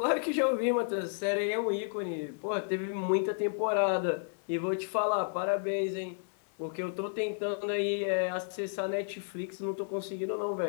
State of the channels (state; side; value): silent; right; 56 dB below the other